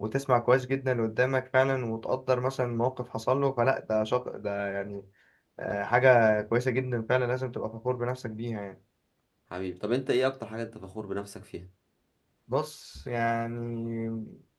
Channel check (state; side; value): identical; both; correlation 1.00